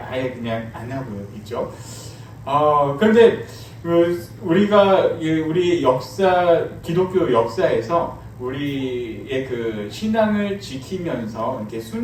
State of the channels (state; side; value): identical; both; correlation 1.00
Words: 그냥 안 하고 있죠. 그런데 우리가 우리 역사 기독교 역사에서 우리의 그 신앙을 지키면서 이렇게